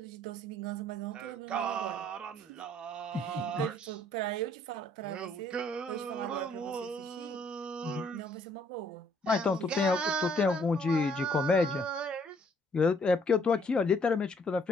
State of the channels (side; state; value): both; normal; correlation 0.64